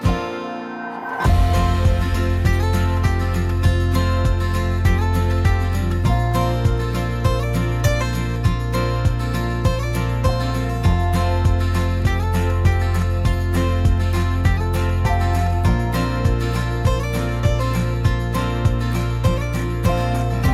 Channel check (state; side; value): identical; both; correlation 1.00